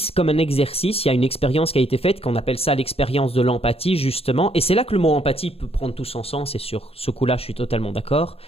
il y a une expérience qui a été faite, qu'on appelle ça l'expérience de l'empathie, justement. Et c'est là que le mot empathie peut prendre tout son sens, et sur ce coup-là, je suis totalement d'accord.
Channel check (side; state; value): right; late; 0.28 ms